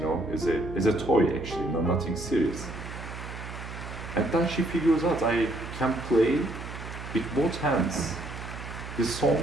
as a toy actually, nothing serious. And then she figures out I can play with both hands. The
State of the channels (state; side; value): noise; right; hum, 10 dB below the sound